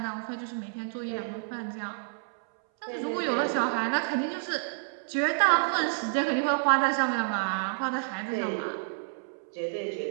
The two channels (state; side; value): silent; left; 58 dB below the other